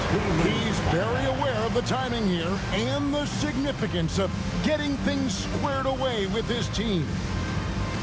He's very aware of the timing here and the significance of getting things squared away with his team.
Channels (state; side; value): identical; both; correlation 1.00